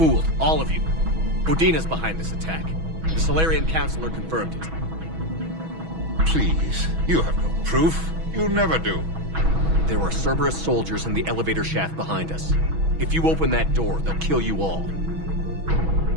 all of you. Udina's behind this attack. The Solarian Councilor confirmed it. Please, you have no proof. You never do. There are Cerberus soldiers in the elevator shaft behind us. If you open that door, they'll kill you all.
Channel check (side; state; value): left; late; 6.2 ms